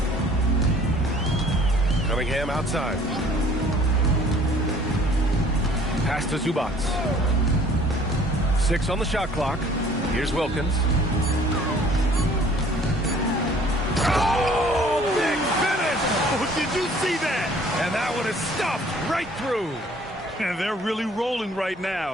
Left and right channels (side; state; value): both; normal; correlation 0.54